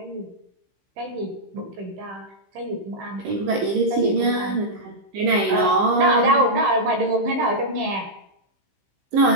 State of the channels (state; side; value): late; left; 15 ms